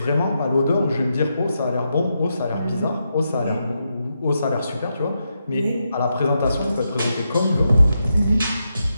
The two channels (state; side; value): inverted; both; correlation -0.84